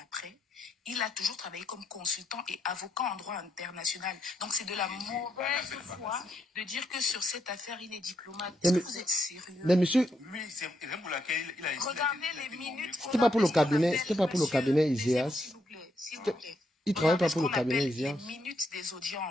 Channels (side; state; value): both; normal; correlation 0.78